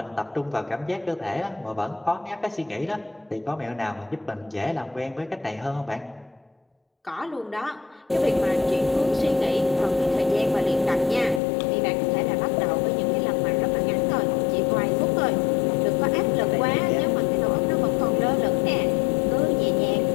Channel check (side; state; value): right; drops out; at 11.4 s